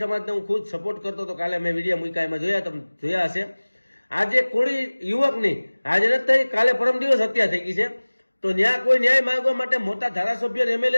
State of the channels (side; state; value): both; inverted; correlation -1.00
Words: સમાજને હું ખુદ સપોર્ટ કરતો હતો। કાલે મેં વિડીયો મૂક્યા, એમાં જોયા, તમે જોયા હશે। આજે કોળી યુવકની આજે નથી થઈ, કાલે પરમ દિવસ હત્યા થઈ ગઈ છે। તો ન્યાય કોઈ ન્યાય માંગવા માટે મોટા ધારાસભ્ય એમએલએ